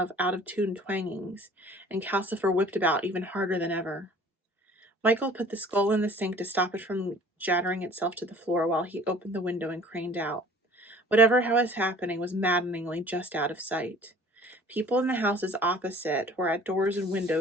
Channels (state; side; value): normal; both; correlation 0.50